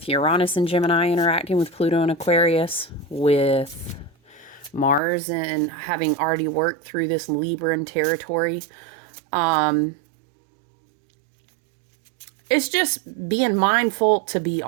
Uranus and Gemini interacting with Pluto and Aquarius, with Mars and having already worked through this Libran territory. It's just being mindful to be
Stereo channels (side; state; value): left; drops out; at 5.0 s